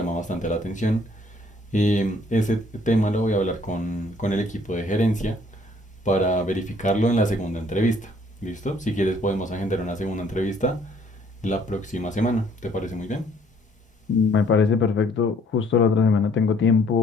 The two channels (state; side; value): normal; both; correlation 0.62